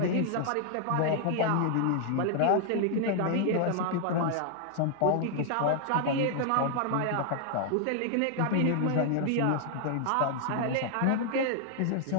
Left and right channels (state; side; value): different; both; correlation 0.00